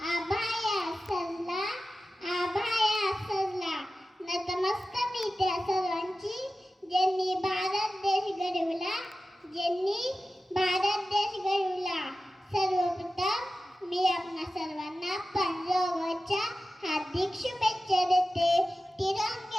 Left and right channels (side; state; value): both; normal; correlation 0.94